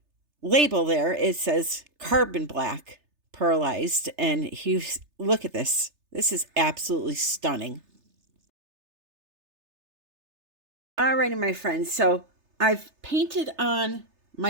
label there. It says carbon black pearlized, and look at this. This is absolutely stunning. Alrighty, my friends, so I've painted on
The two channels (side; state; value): left; late; 3.3 ms